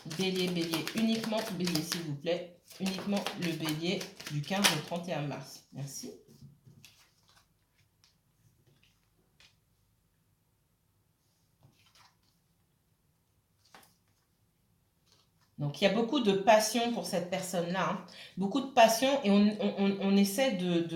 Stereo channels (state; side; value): identical; both; correlation 1.00